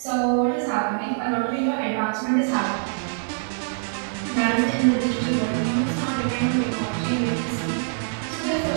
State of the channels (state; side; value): silent; left; digital silence